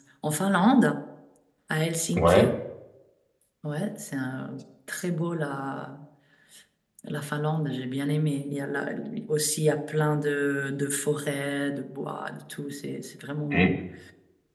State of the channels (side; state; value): both; identical; correlation 1.00